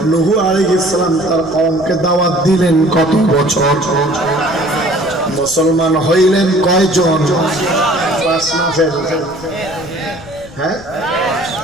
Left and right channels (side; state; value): left; noise; rumble, 20 dB below the sound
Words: নূহ আলাইহিস সালাম তার কওমকে দাওয়াত দিলেন কত বছর? মুসলমান হইলেন কয়জন? 5 না ফেল? হ্যাঁ,